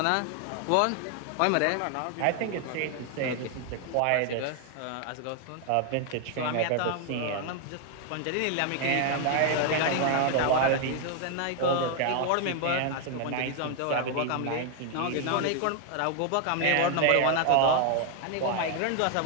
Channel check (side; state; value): both; different; correlation 0.00